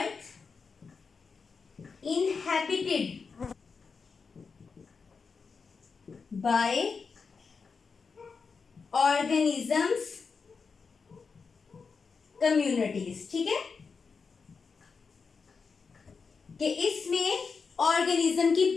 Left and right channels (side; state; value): right; quieter; 5.1 dB